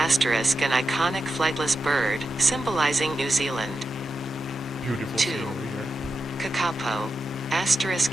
iconic flightless bird, symbolizing New Zealand. Beautiful 2. scenery here. Kakapo,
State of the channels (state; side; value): normal; both; correlation 0.89